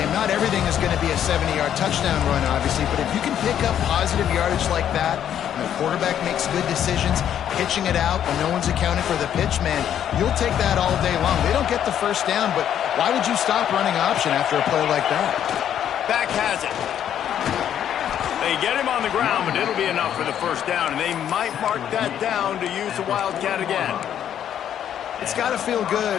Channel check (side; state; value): right; quieter; 9.9 dB